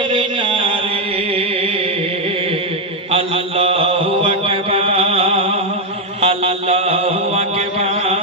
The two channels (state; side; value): normal; both; correlation 0.02